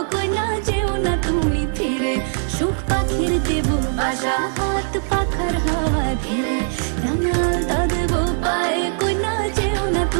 কইনা যেও না তুমি ফিরে। সুখ পাখির দেব বাসা, হাত পাখার হাওয়া ঘিরে, রাঙাল তা দেব পায়ে, কইনা যেও না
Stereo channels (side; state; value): left; silent; digital silence